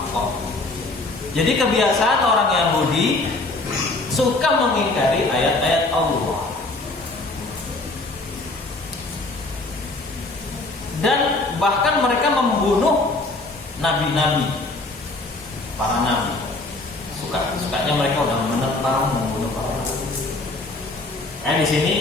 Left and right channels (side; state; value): right; quieter; 3.1 dB